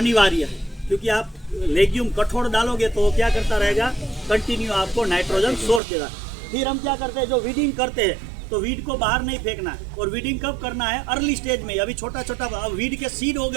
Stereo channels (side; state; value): left; drops out; at 5.8 s